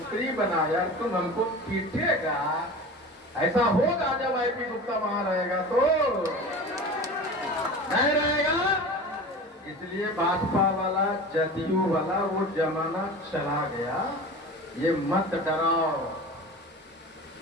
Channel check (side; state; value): both; normal; correlation 0.34